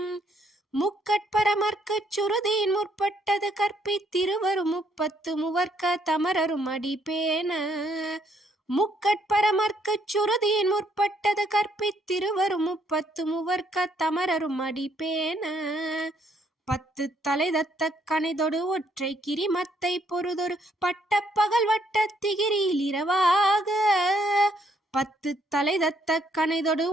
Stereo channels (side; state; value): both; normal; correlation 0.70